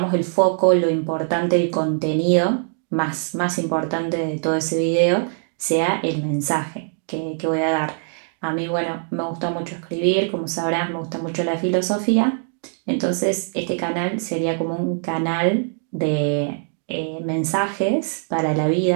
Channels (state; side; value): silent; left; digital silence